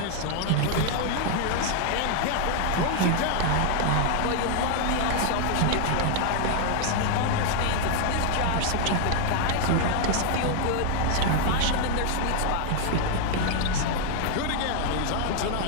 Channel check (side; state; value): both; different; correlation 0.00